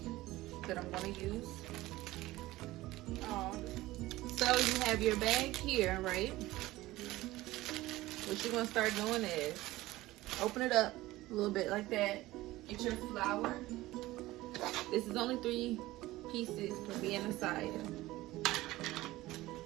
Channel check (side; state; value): left; quieter; 17.8 dB